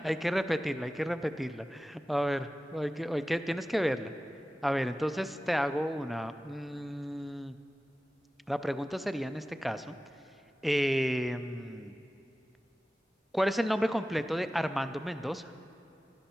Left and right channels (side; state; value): both; normal; correlation 0.96